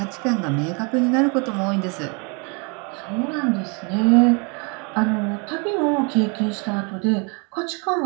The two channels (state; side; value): quieter; left; 33.6 dB